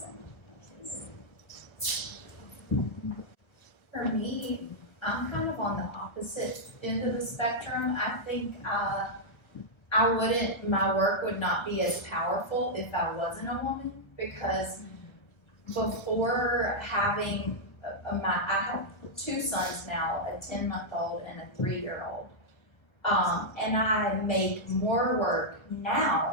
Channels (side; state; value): right; late; 1.3 ms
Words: For me, I'm kind of on the opposite end of the spectrum. I think my work would not be as powerful if I wasn't a woman, because before having I have two sons now, a 10-month-old and a 3-year-old. And I make more work